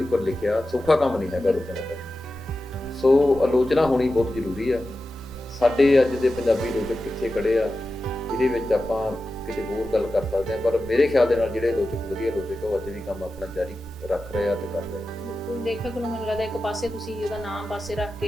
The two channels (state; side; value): normal; both; correlation 0.93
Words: ਲਿਖਿਆ। ਸੌਖਾ ਕੰਮ ਨਹੀਂ ਹੈਗਾ ਆਲੋਚਨਾ ਕਰਨਾ। ਸੋ ਆਲੋਚਨਾ ਹੋਣੀ ਬਹੁਤ ਜ਼ਰੂਰੀ ਆ। ਸਾਡੇ ਅੱਜ ਦੇ ਪੰਜਾਬੀ ਆਲੋਚਕ ਕਿੱਥੇ ਖੜੇ ਆ, ਇਹਦੇ ਵਿੱਚ ਆਪਾਂ ਕਿਤੇ ਹੋਰ ਗੱਲ ਕਰ ਸਕਦੇ ਹਾਂ, ਪਰ ਮੇਰੇ ਖਿਆਲ ਦੇ ਨਾਲ ਜਿਹੜੇ ਆਲੋਚਕ ਵਧੀਆ ਆਲੋਚਕ ਉਹ ਅੱਜ ਵੀ ਕੰਮ ਆਪਣਾ ਜਾਰੀ ਰੱਖ ਰਹੇ ਆ ਤੇ ਕਰ ਰਹੇ ਆ। ਬਿਲਕੁਲ, ਲੇਖਕ ਨੂੰ ਮੈਨੂੰ ਲੱਗਦਾ ਇੱਕ ਪਾਸੇ ਤੁਸੀਂ ਉਹਦਾ ਨਾਮ ਪਾਸੇ ਰੱਖ